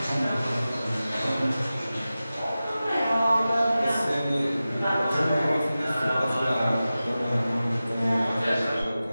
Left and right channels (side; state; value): both; inverted; correlation -0.95